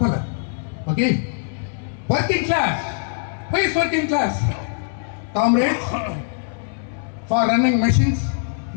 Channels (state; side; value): silent; right; 64 dB below the other